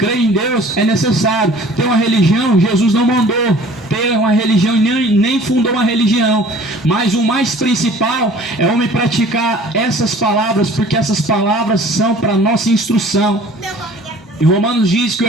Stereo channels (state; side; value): normal; both; correlation 0.49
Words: em Deus é necessário. Ter uma religião, Jesus não mandou ter uma religião, nem fundou uma religião. Mas o mais principal é o homem praticar essas palavras, porque essas palavras são para nossa instrução. Em Romanos diz que